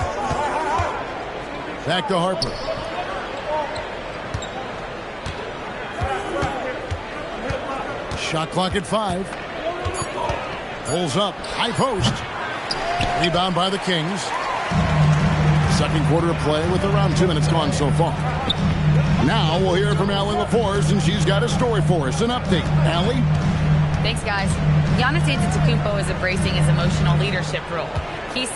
Back to Harper. Shot clock at 5. Pulls up. High post. Rebound by the Kings. Second quarter of play with around 2 minutes gone so far. Now we'll hear from Allie LaForce, and she's got a story for us. An update. Allie? Thanks, guys. Giannis Antetokounmpo is embracing his emotional leadership role. He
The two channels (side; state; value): both; identical; correlation 1.00